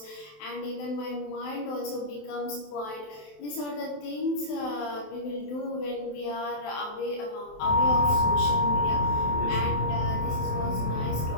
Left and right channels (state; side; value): late; right; 27 ms